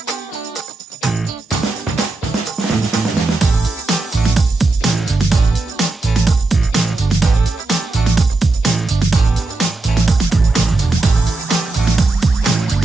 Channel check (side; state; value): left; quieter; 3.1 dB